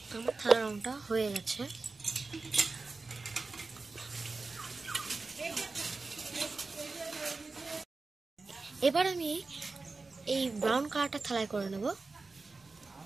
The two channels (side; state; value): left; quieter; 3.8 dB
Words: আমার থালা রংটা হয়ে গেছে। এবার আমি এই ব্রাউন কালারটা থালায় করে নেব।